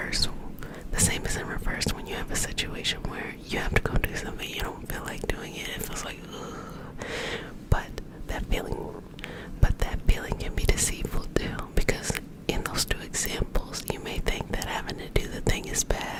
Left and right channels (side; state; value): both; identical; correlation 1.00